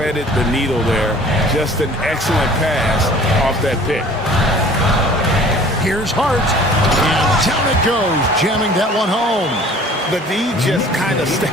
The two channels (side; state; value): both; normal; correlation 0.49